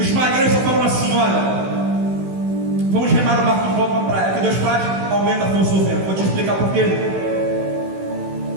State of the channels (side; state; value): left; late; 16 ms